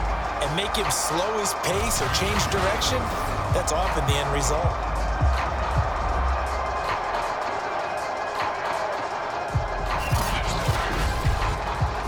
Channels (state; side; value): identical; both; correlation 1.00